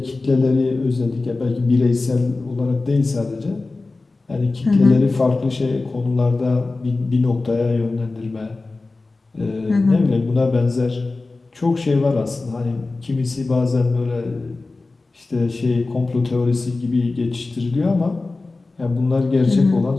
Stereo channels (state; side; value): quieter; right; 3.4 dB